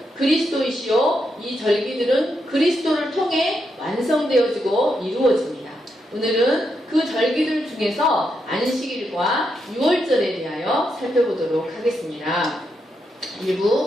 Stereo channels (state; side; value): normal; both; correlation 0.82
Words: 그리스도이시요 이 절기들은 그리스도를 통해 완성되어지고 이루어집니다. 오늘은 그 절기들 중에서 안식일과 유월절에 대하여 살펴보도록 하겠습니다.